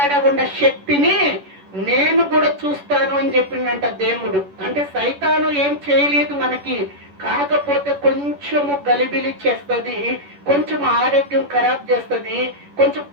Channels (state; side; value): late; left; 11 ms